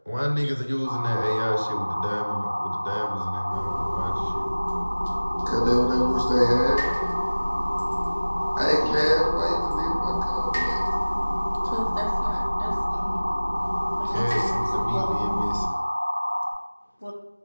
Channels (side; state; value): both; inverted; correlation -1.00